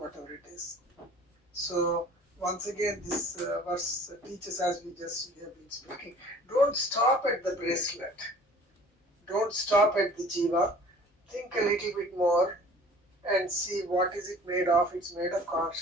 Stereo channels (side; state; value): both; normal; correlation 0.48